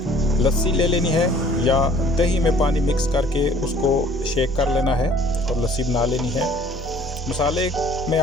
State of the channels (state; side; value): normal; both; correlation 0.54